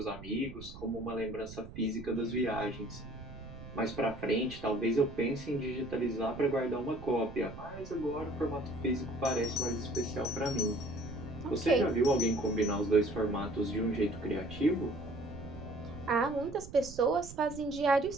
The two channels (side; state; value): right; noise; rumble, 14 dB below the sound